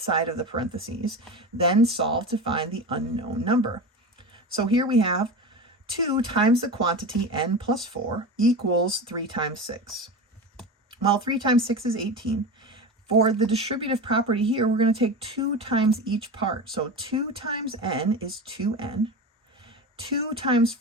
of the parentheses, then solve to find the unknown number. So here we have 2 times the quantity n plus 4 equals 3 times 6. Well, 3 times 6 is 18. For the distributive property here, we're going to take 2 times each part. So 2 times n is 2n. 2 times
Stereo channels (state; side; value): normal; both; correlation 0.26